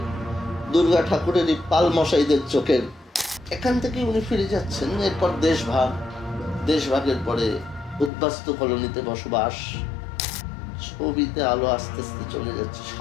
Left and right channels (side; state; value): right; drops out; at 8.1 s